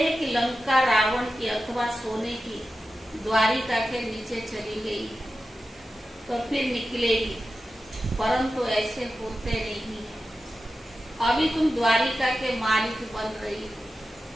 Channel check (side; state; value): both; normal; correlation 0.92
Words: कि लंका रावण की अथवा सोने की द्वारिका के नीचे चली गई तो फिर निकलेगी, परंतु ऐसे होते नहीं है। अभी तुम द्वारिका के मालिक बन रही